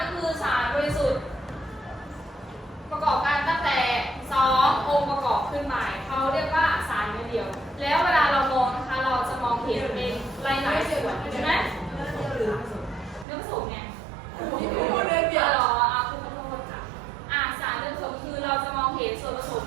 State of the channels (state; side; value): drops out; left; at 13.2 s